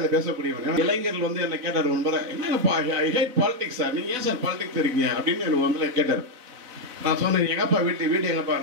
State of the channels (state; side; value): late; left; 4.0 ms